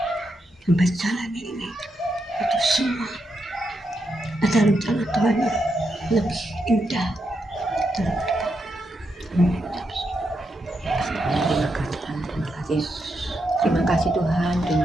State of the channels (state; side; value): normal; both; correlation 0.83